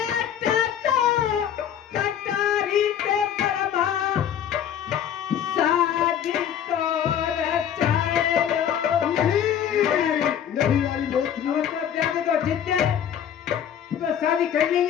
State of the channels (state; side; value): quieter; right; 9.4 dB